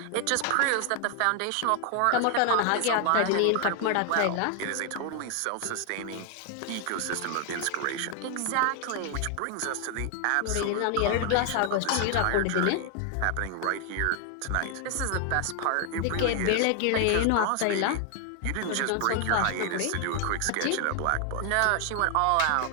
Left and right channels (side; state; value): both; different; correlation 0.00